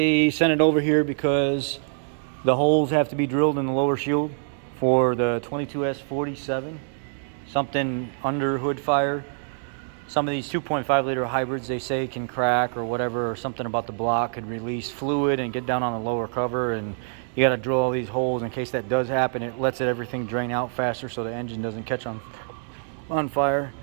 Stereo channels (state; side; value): silent; left; digital silence